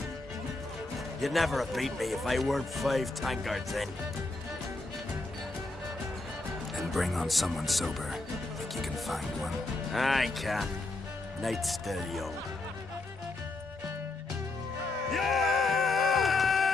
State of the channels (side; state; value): right; quieter; 3.1 dB